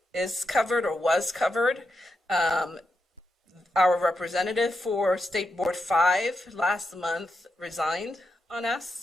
is covered or was covered. Our representative for State Board 5 last month resigned on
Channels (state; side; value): normal; both; correlation 0.85